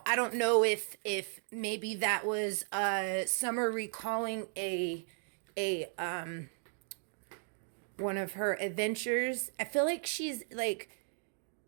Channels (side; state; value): left; silent; 54 dB below the other